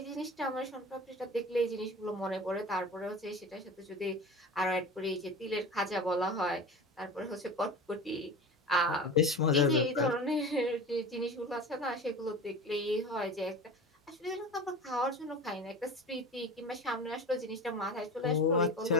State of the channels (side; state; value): both; normal; correlation 0.34